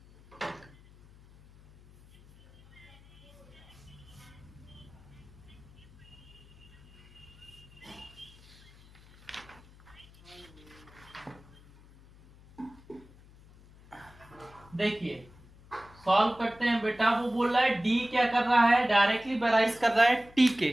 देखिए, सॉल्व करते हैं बेटा। वो बोल रहा है डी क्या कर रहा है, डायरेक्टली बैराइज कर रहा है टी के।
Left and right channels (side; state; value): left; noise; hum, 23 dB below the sound